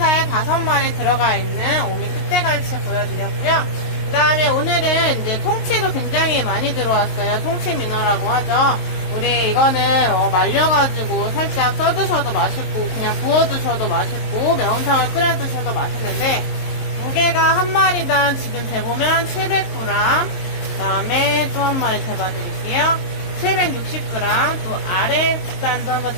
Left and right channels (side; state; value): right; late; 22 ms